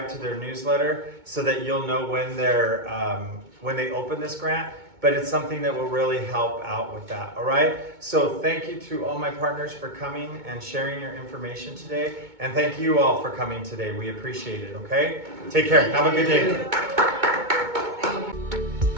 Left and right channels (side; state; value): left; late; 2.2 ms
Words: to their newsletter so that you'll know when they open this grant. But it's something that will really help out with that, all right? So thank you to all my partners for coming and sharing your information today. And thank you all for coming today. We appreciate it, okay? Take care. Have a good day.